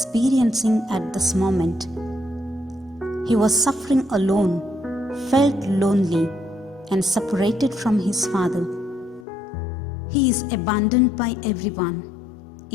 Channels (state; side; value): drops out; right; at 9.2 s